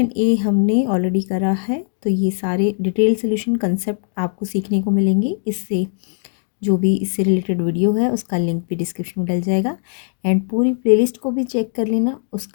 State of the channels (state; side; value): silent; right; digital silence